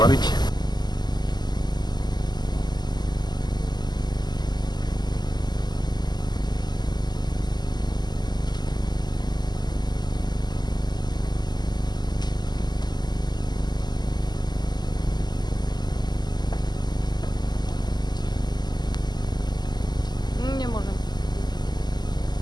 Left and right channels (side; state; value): right; late; 0.21 ms